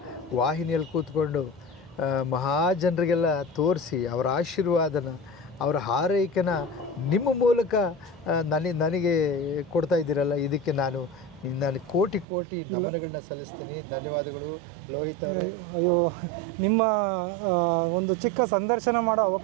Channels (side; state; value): left; drops out; at 12.2 s